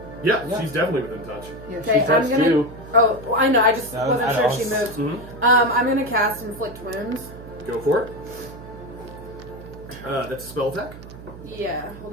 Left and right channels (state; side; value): noise; right; hum, 15 dB below the sound